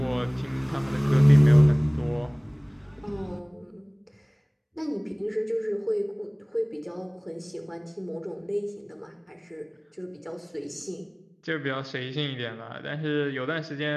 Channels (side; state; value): both; identical; correlation 1.00